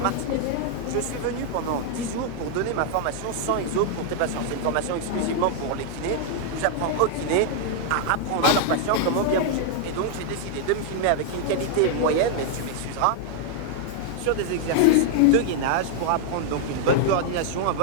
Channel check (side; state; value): both; different; correlation 0.00